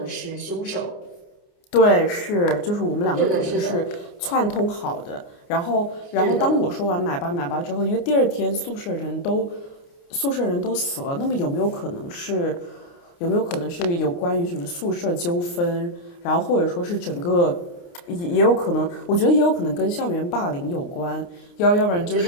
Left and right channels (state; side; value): late; right; 29 ms